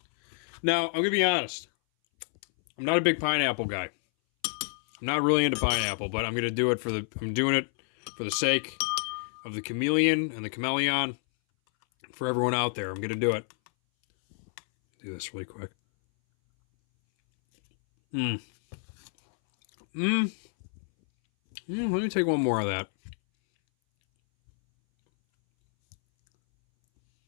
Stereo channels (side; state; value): right; silent; 59 dB below the other